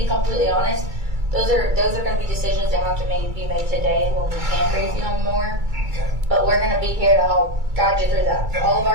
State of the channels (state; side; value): late; left; 2.3 ms